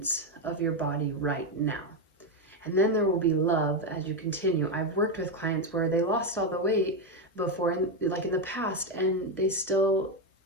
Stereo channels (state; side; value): normal; both; correlation 0.07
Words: of your body right now. And then there will be love as you continue. I've worked with clients where they lost all the weight before, like in the past, and they still